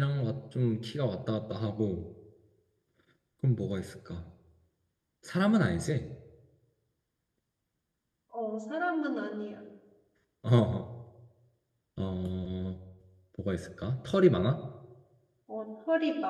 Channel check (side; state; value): both; identical; correlation 1.00